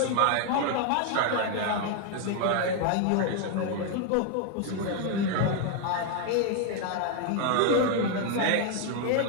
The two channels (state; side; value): different; both; correlation 0.00